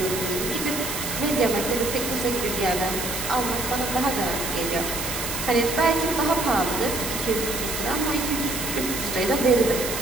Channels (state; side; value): noise; right; hiss, 4 dB below the sound